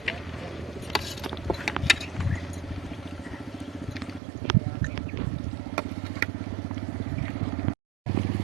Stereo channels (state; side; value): drops out; left; at 4.2 s